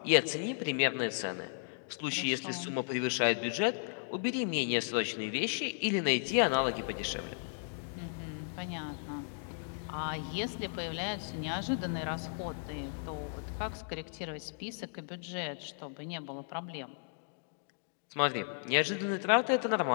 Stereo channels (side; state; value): right; silent; digital silence